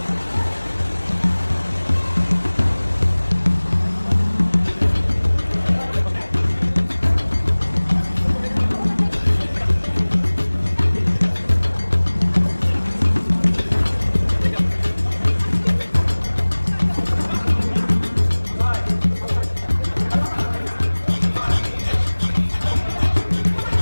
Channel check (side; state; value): both; inverted; correlation -1.00